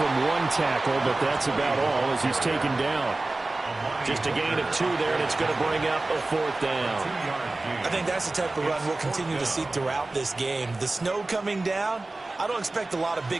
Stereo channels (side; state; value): left; quieter; 3.1 dB